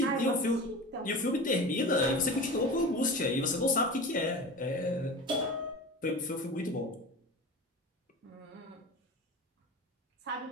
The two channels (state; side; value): normal; both; correlation 0.32